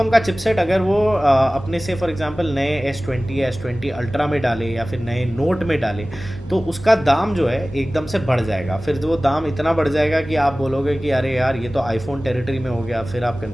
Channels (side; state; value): both; normal; correlation 0.98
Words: का चिपसेट अगर वो अपने से फॉर एग्जांपल नए S20 या S20 अल्ट्रा में डाले या फिर नए नोट में डाले, तो उसका दाम जो है एकदम से बढ़ जाएगा। फिर वो दाम इतना बढ़ जाएगा कि आप बोलोगे कि अरे यार ये तो आईफोन टेरिटरी में हो गया। फिर आप